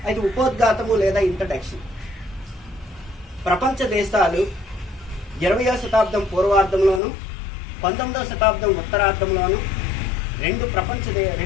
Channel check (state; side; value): drops out; right; at 7.0 s